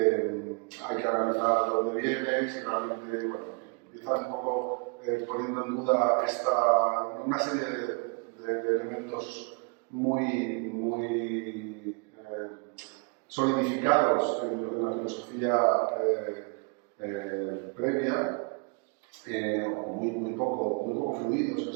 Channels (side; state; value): left; quieter; 35.4 dB